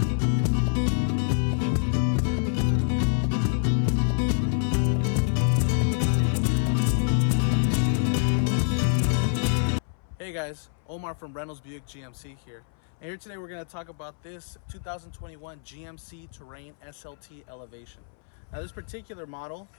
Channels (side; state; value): right; silent; 60 dB below the other